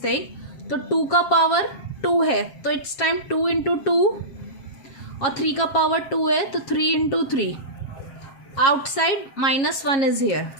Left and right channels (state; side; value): late; right; 7.3 ms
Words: thing. तो 2 का power 2 है तो it's time 2 into 2 और 3 का power 2 है तो 3 into 3. Outside -1 is here.